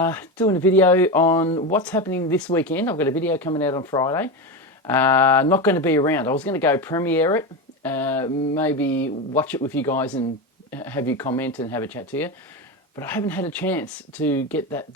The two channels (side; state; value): both; normal; correlation 0.18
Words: doing a video on what's happening this weekend. I've got a video coming out on Friday. Not going to be around. I was going to go premiere it, maybe watch it with you guys and have you comment and have a chat to you. But I haven't had a chance to get that